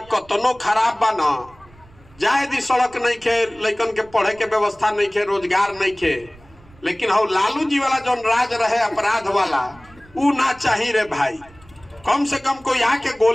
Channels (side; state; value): right; noise; rumble, 26 dB below the sound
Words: कतनो खराब बा न जाए दी, सड़क नहीं खे, लड़कन के पढ़े के व्यवस्था नहीं खे, रोजगार नहीं खे, लेकिन हो लालू जी वाला जो राज रहे अपराध वाला ऊ ना चाहिए रे भाई। कम से कम कोई आके